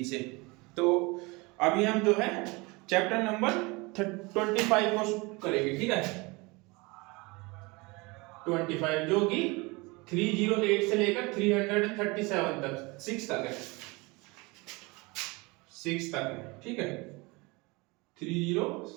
से। तो अभी हम जो है चैप्टर नंबर 25 को करेंगे, ठीक है। 25 जो कि 308 से लेकर 337 तक 6 तक है, 6 तक है, ठीक है।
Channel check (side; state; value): left; quieter; 25.6 dB